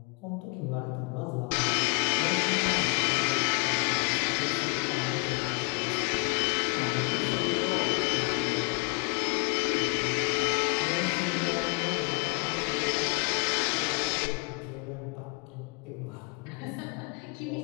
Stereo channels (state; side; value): quieter; right; 31.5 dB